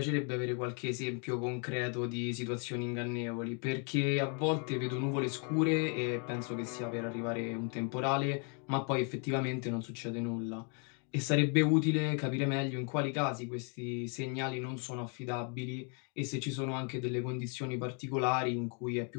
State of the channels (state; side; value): quieter; right; 39.2 dB